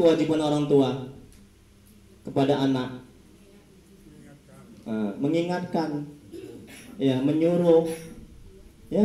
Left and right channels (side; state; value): both; identical; correlation 1.00